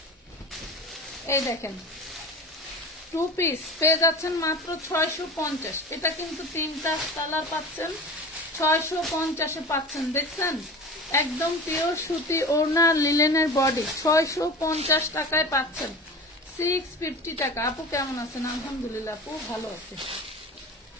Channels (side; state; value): both; normal; correlation 0.33